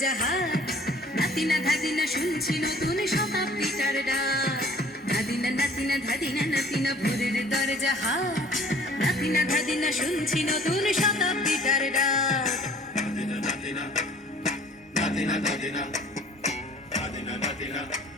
হাট, নাতিনা ধাদিনা শুনছি নতুন শতাব্দীটার ডাক। ধাদিনা নাতিনা ধাদিনা নাতিনা ভোরের দরজা হাট, নাতিনা ধাদিনা শুনছি নতুন শতাব্দীটার ডাক। নাতিনা নাতিনা নাতিনা ধাদিনা ধাদিনা নাতিনা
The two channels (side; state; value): both; normal; correlation 0.52